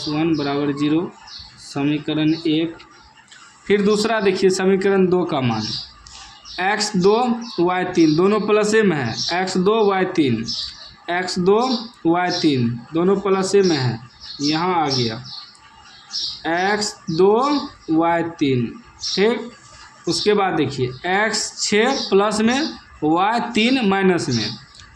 = 0, समीकरण 1। फिर दूसरा देखिए समीकरण 2 का मान, x2 y3 दोनों प्लसे में है, x2 y3 x2 y3 दोनों प्लसे में है, यहाँ आ गया x2 y3, ठीक। उसके बाद देखिए x6 प्लस में y3 माइनस में,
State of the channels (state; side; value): identical; both; correlation 1.00